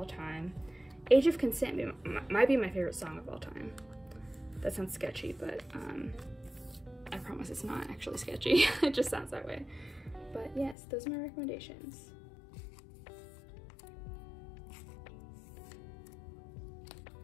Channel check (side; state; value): right; drops out; at 10.8 s